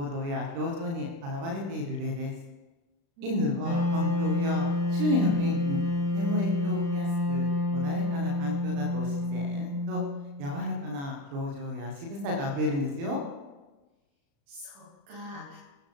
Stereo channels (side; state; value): left; late; 36 ms